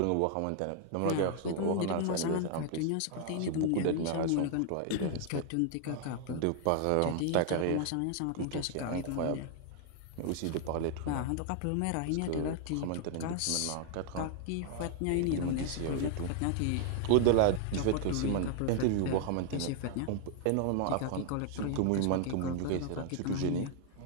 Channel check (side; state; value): both; different; correlation 0.00